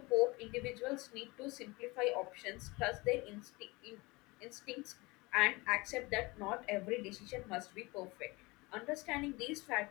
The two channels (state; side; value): quieter; right; 23.9 dB